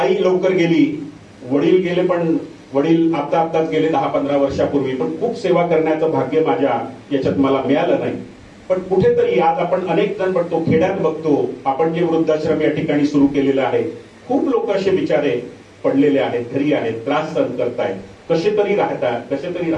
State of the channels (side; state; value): both; identical; correlation 1.00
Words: लवकर गेली, वडील गेले, पण वडील आताच गेले 10-15 वर्षापूर्वी. पण खूप सेवा करण्याचं भाग्य माझ्या याच्यात मला मिळालं नाही. पण कुठेतरी आज आपण अनेक जण बघतो, खेड्यात बघतो, आपण जे वृद्धाश्रम या ठिकाणी सुरू केलेलं आहे, खूप लोक असे बिचारे पडलेले आहेत, घरी आहेत, त्रास सहन करतायत, कसे तरी